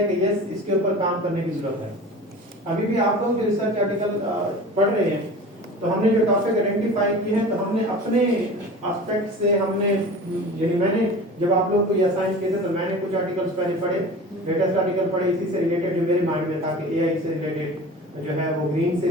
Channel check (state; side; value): normal; both; correlation 0.37